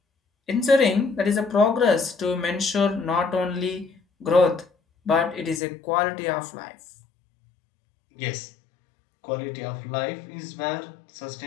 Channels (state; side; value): drops out; right; at 5.6 s